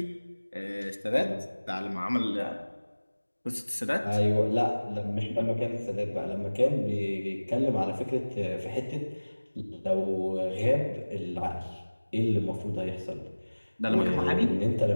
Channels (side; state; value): both; inverted; correlation -1.00